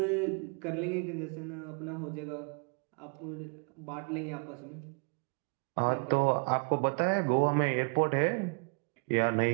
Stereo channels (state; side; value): quieter; left; 35.9 dB